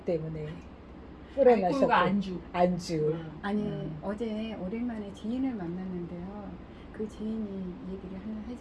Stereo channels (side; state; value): both; identical; correlation 1.00